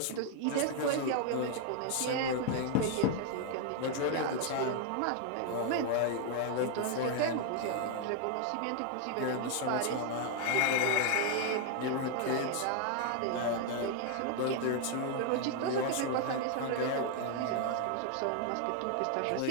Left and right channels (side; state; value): both; different; correlation 0.00